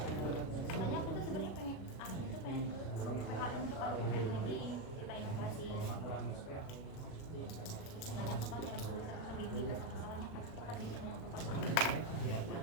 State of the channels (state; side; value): late; right; 37 ms